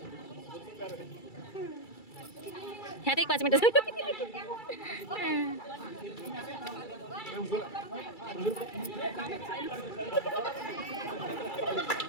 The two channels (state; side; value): late; right; 2.3 ms